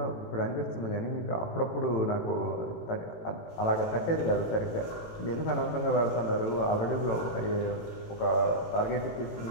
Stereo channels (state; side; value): late; right; 18 ms